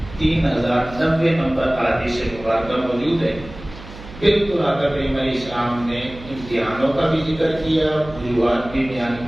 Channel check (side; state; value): right; noise; hum, 16 dB below the sound